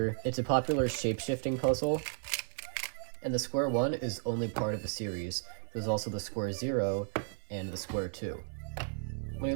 It's a popular shape-shifting puzzle, and the Square-1 is only part of a series. There's also the Square-0 and the Square-2. When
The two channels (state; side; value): silent; left; 55 dB below the other